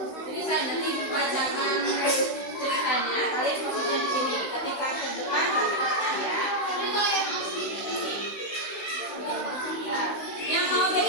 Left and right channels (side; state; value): right; late; 16 ms